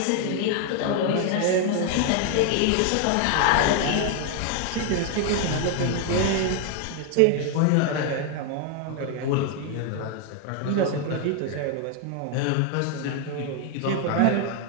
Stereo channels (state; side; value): different; both; correlation 0.01